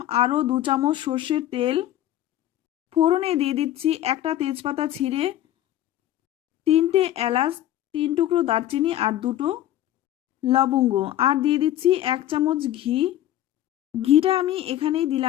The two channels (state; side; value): quieter; right; 12.9 dB